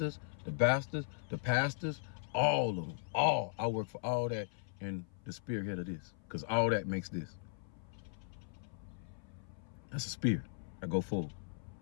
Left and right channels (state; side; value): silent; right; 52 dB below the other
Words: the bastards, the pastors, all of them, I work for all that in the spearhead of this, because all that makes this. That's a spear. I go forward.